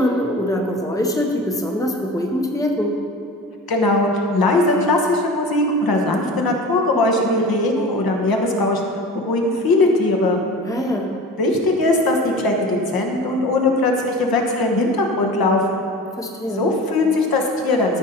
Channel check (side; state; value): both; normal; correlation 0.35